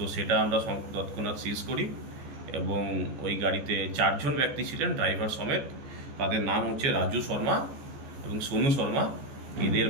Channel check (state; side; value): late; left; 14 ms